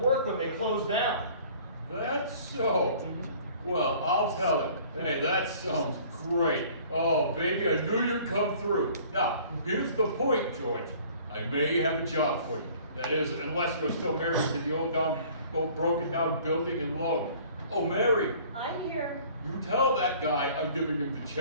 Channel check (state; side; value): inverted; both; correlation -0.51